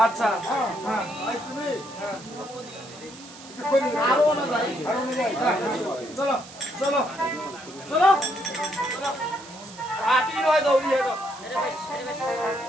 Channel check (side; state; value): right; noise; hiss, 18 dB below the sound